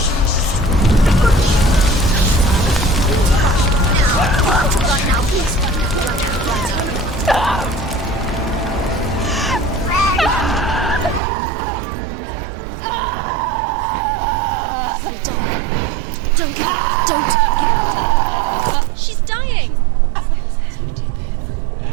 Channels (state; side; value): drops out; left; at 11.2 s